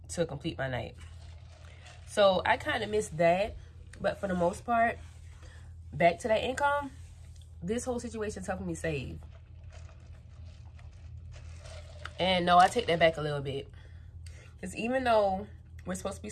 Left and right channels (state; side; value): identical; both; correlation 1.00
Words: to complete my night. So I kind of missed that, but for the most part, back to that income, this whole situation's helping me save. And no, I take that back a little bit. Because even though we're supposed to be